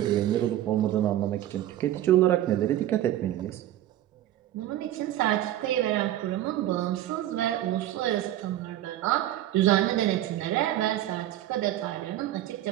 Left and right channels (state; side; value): quieter; left; 13.2 dB